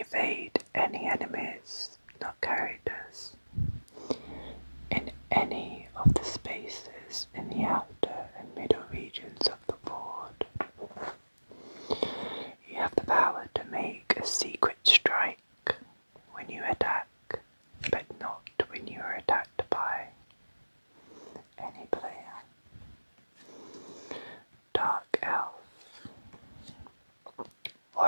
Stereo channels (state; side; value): inverted; both; correlation -1.00